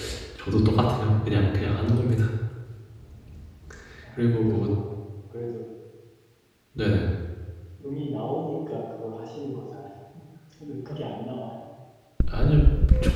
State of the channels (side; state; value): both; identical; correlation 1.00